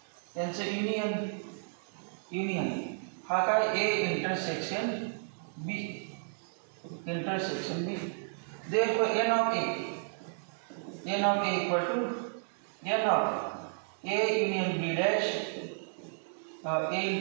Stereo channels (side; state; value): left; silent; digital silence